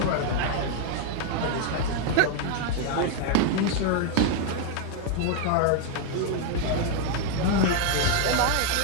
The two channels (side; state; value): both; different; correlation 0.00